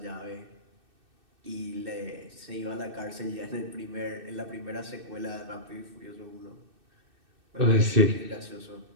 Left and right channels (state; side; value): late; left; 2.6 ms